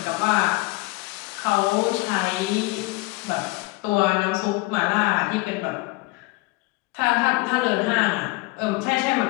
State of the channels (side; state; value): right; quieter; 22.8 dB